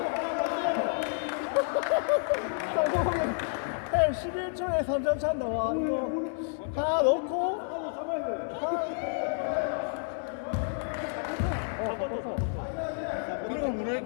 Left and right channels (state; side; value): silent; right; digital silence